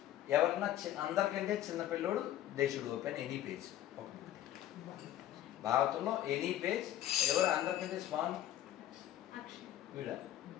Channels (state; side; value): quieter; right; 12.7 dB